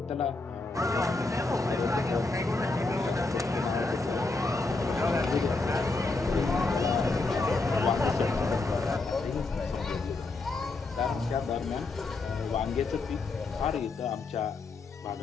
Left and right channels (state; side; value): quieter; right; 3.5 dB